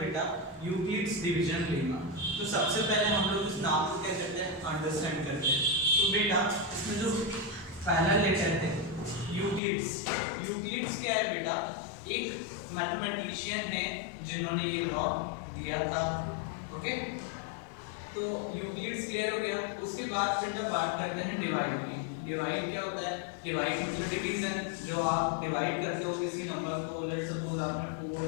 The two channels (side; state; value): right; drops out; at 9.6 s